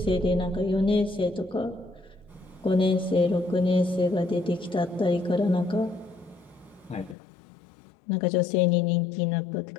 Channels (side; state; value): right; drops out; at 7.2 s